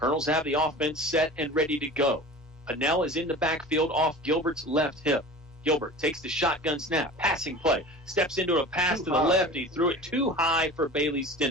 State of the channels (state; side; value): normal; both; correlation 0.37